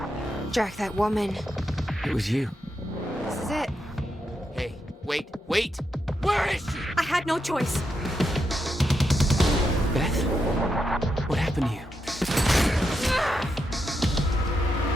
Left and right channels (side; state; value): both; normal; correlation 0.84